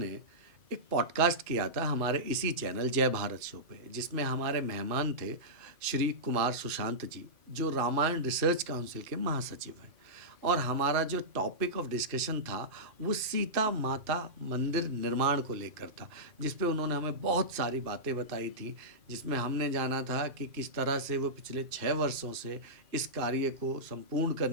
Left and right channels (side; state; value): left; late; 2.4 ms